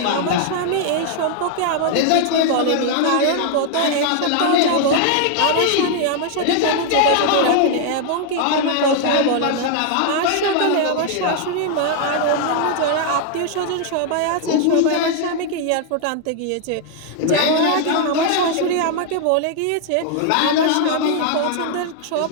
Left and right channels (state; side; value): different; both; correlation 0.00